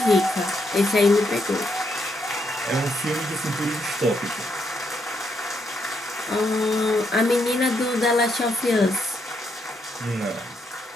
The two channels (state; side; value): normal; both; correlation 0.77